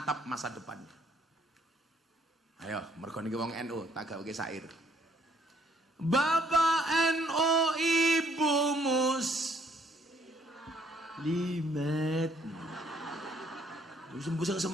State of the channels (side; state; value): both; normal; correlation 0.65